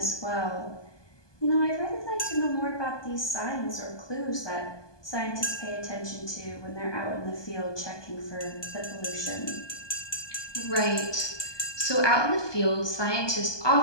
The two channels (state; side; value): late; right; 1.2 ms